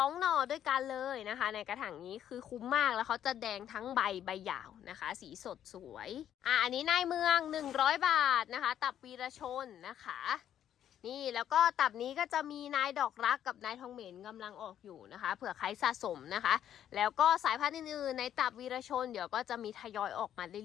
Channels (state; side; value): quieter; right; 10.4 dB